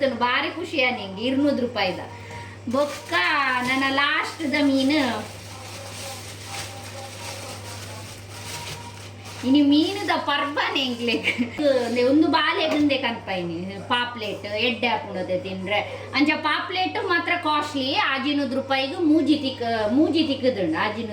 ಭಾರಿ ಖುಷಿ ನಿಂಗೆ 200 ರೂಪಾಯಿದ ಬೊಕ್ಕ ನನ್ನ ಲಾಸ್ಟ್ದ ಮೀನು ಇನಿ ಮೀನುದ ಪರ್ಬನೆ ಎಂಗ್ಲೆಗ್ ಒಂದು ಬಾಲೆಗಂದೆ ಕನ್ಪೈನಿ ಪಾಪ್ಲೆಟ್ ಎಡ್ಡೆ ಹಾಪುಣತೆ ತಿಂದ್ರೆ ಅಂಚ ಪಾಪ್ಲೆಟ್ ಮಾತ್ರ ಕಾಸ್ಟ್ಲಿ 100 ರೂಪಾಯಿಗೆ ಮೂಜಿ ತಿಕ್ಕದುಂಡು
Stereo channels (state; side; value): identical; both; correlation 1.00